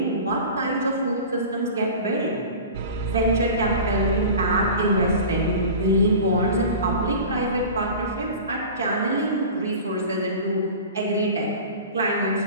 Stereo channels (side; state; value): both; inverted; correlation -0.36